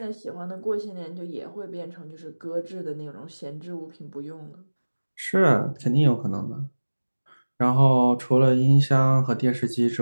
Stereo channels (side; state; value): both; inverted; correlation -1.00